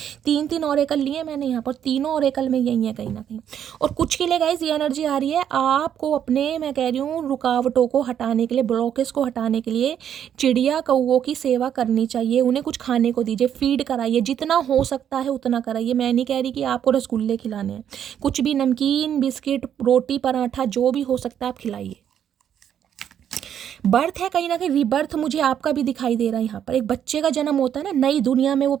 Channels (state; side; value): quieter; left; 9.4 dB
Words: 3 ओरेकल लिए मैंने यहाँ पर, तीनों ओरेकल में यही है कहीं ना कहीं। और कुछ के लिए गाइस ये एनर्जी आ रही है आपको अपने, मैं कह रही हूँ, रुकावटों को हटाने के लिए, ब्लॉकेज को हटाने के लिए चिड़िया कौवों की सेवा करनी चाहिए। उन्हें कुछ खाने को दीजिए, फीड कराइए, जितना हो सकता है उतना कराइए। मैं नहीं कह रही कि आपको रसगुल्ले खिलाने हैं, कुछ भी नमकीन बिस्किट रोटी पराठा जो भी हो सकता है आप खिलाइए। बर्थ है कहीं ना कहीं, रीबर्थ मुझे आपका भी दिखाई दे रहा है। यहाँ पर एक बच्चे का जन्म होता है ना, नई दुनिया में वो